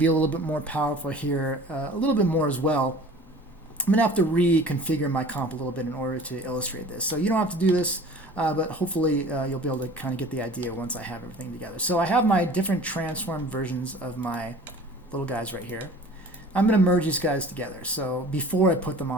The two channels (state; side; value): normal; both; correlation 0.44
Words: a little bit more powerful here, a little bit more as well. I'm going to have to reconfigure my comp a little bit in order to illustrate this. So you don't have to do this, but hopefully you'll be able to kind of get the idea once I have everything together. So I have my different transform versions of my little guys right here. I'm going to merge these guys together. So before I put them